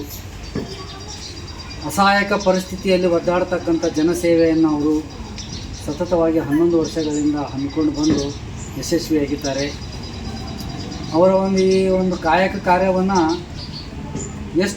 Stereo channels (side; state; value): both; identical; correlation 1.00